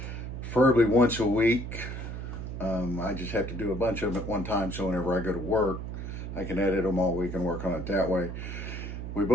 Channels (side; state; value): right; noise; hum, 7 dB below the sound